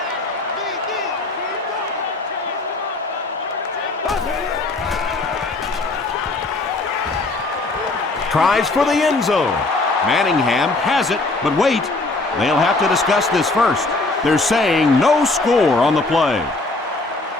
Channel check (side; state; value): right; quieter; 3.2 dB